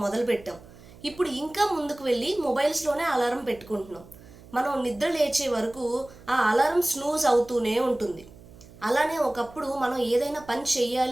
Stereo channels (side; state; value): right; noise; hum, 21 dB below the sound